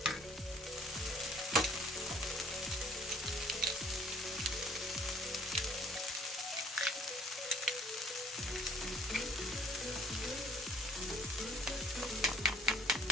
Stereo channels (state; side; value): normal; both; correlation 0.56